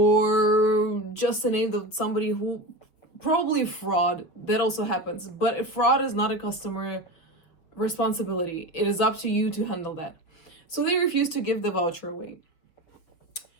just a name of somebody who probably fraud. That also happens. But fraud is not a customer responsibility. It is up to you to handle that. So they refuse to give the voucher away.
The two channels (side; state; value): right; late; 6.3 ms